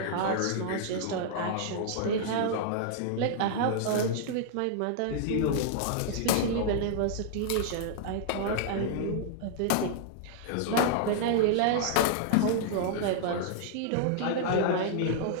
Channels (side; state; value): both; different; correlation -0.01